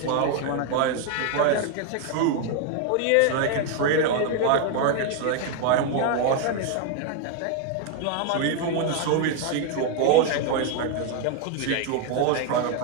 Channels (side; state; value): both; different; correlation 0.00